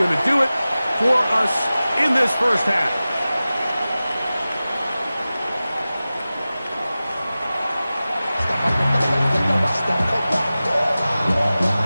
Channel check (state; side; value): inverted; both; correlation -0.96